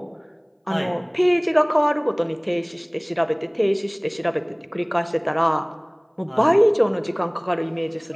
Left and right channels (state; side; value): identical; both; correlation 1.00